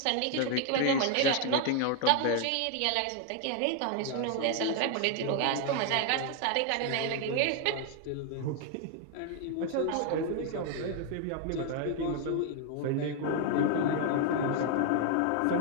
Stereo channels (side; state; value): both; different; correlation 0.00